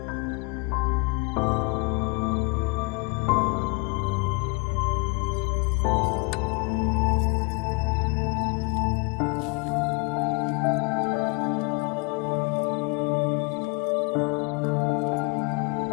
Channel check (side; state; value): right; quieter; 29.6 dB